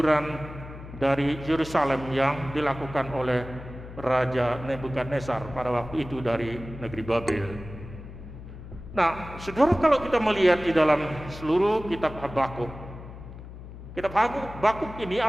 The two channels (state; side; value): noise; left; hum, 13 dB below the sound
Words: dari Yerusalem yang dilakukan oleh Raja Nebukadnezar pada waktu itu dari negeri Babel. Nah, saudara, kalau kita melihat di dalam seluruh kitab Habakuk, kitab Habakuk ini